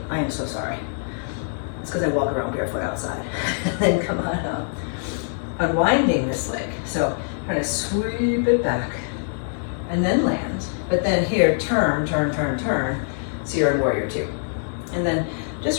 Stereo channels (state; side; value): silent; right; 57 dB below the other